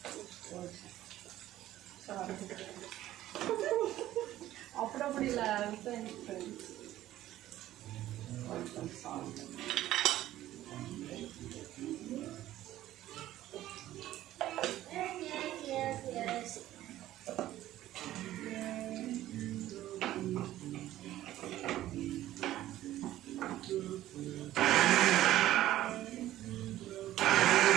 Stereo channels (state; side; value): quieter; left; 14.1 dB